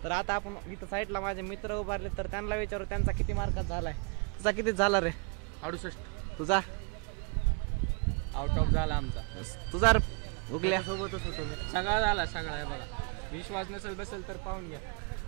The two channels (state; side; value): quieter; left; 35.7 dB